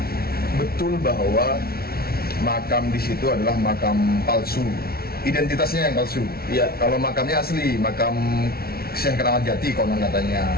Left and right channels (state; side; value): late; right; 0.44 ms